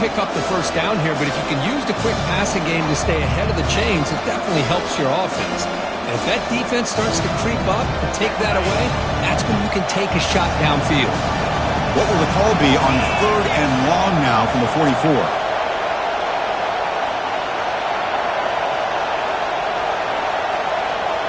up the first down here, but if you can use the quick passing game to stay ahead of the chains, it definitely helps your offense. And if that defense starts to creep up and take that away, that's when you can take a shot downfield. What will the call be on 3rd and long now from the 44?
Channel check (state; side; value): identical; both; correlation 1.00